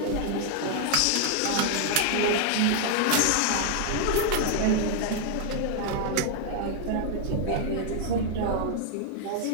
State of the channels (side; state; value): both; different; correlation 0.00